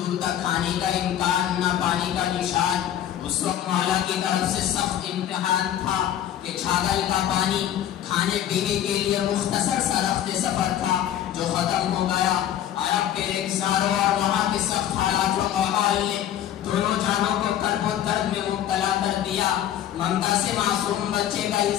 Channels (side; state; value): right; quieter; 11.1 dB